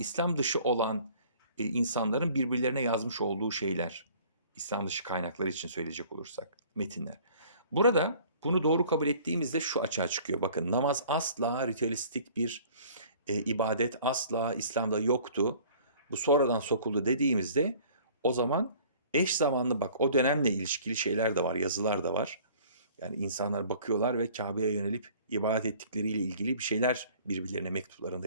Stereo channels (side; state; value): both; inverted; correlation -0.51